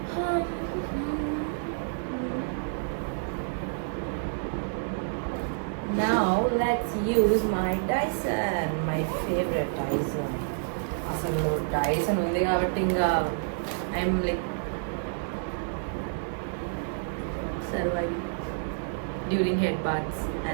now let's use my Dyson, my favorite Dyson. అసలు Dyson ఉంది కాబట్టి ఇంకా I'm like surviving during head baths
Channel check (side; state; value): left; silent; digital silence